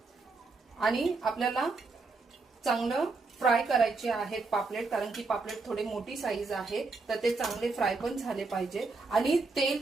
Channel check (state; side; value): quieter; left; 3.9 dB